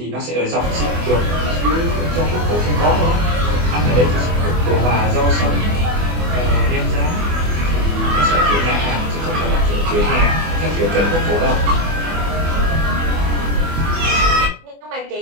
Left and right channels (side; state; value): left; late; 24 ms